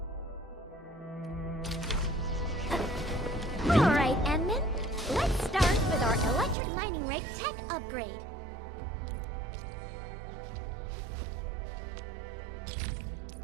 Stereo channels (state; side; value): drops out; left; at 6.6 s